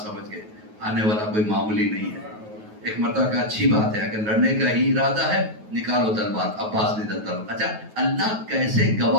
سمجھ گئے آنے والا کوئی معمولی نہیں ہے. ایک مرتبہ کا اچھی بات ہے, اگر لڑنے کا ہی ارادہ ہے نکالو تلوار. عباس نے تلوار. اچھا اللہ کیسے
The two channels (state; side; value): late; left; 9.3 ms